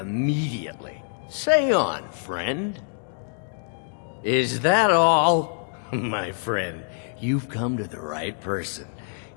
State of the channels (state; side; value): silent; right; digital silence